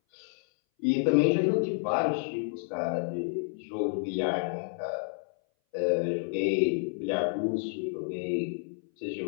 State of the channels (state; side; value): silent; right; 58 dB below the other